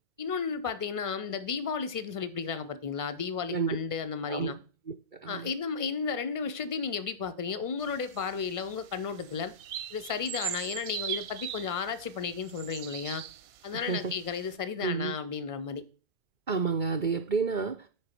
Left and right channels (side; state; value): left; late; 1.5 ms